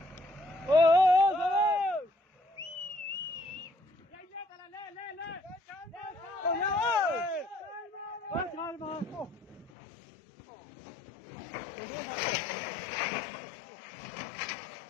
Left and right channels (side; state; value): right; drops out; at 9.7 s